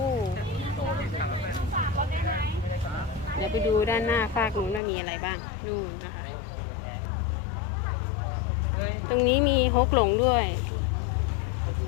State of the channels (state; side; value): drops out; right; at 4.8 s